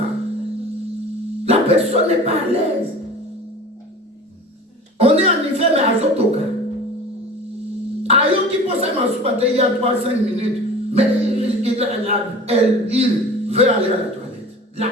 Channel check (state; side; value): normal; both; correlation 0.39